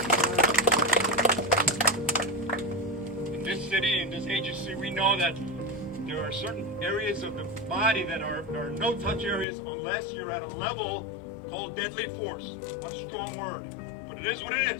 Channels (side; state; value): right; drops out; at 9.5 s